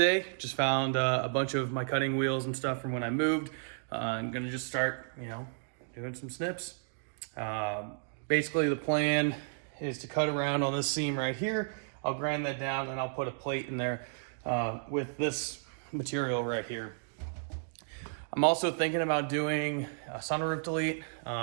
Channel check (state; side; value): silent; left; digital silence